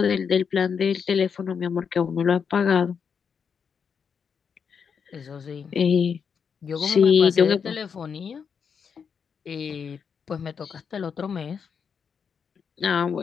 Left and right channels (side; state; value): right; quieter; 6.6 dB